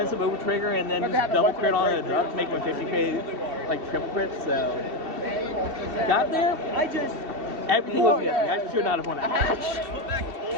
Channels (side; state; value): left; late; 2.7 ms